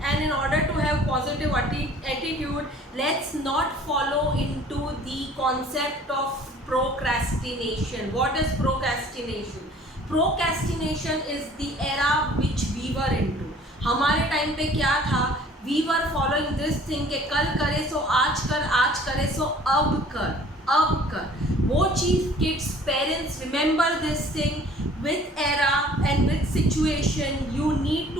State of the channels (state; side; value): normal; both; correlation 0.52